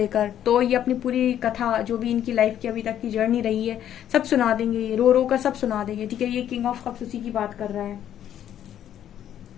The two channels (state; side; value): quieter; right; 10.6 dB